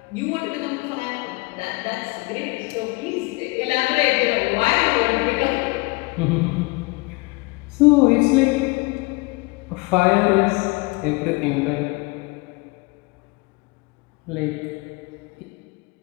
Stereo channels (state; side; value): quieter; right; 25.8 dB